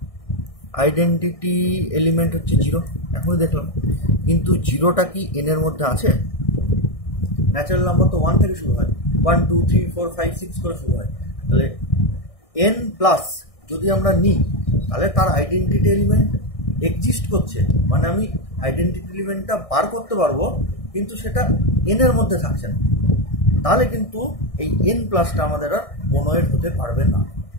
আইডেন্টিটি এলিমেন্ট হচ্ছে 0, এখনই দেখলাম। কিন্তু 0টা কি এনের মধ্যে আছে? ন্যাচারাল নাম্বার তো 1 থেকে শুরু হয়, 1 2 3 4 5 6 করে শুরু হয়। তাহলে n প্লাস যদি আমরা নিই তাহলে তার আইডেন্টিটি এলিমেন্ট এক্সিস্ট করছে, মানে আমি আইডেন্টিটি এলিমেন্টটা বার করতে পারবো কিন্তু সেটা এনের মধ্যে থাকছে না। তাহলে কিন্তু এই n প্লাসটা আমাদের আর মনোয়েড হতে পারবে না।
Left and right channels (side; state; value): right; late; 1.6 ms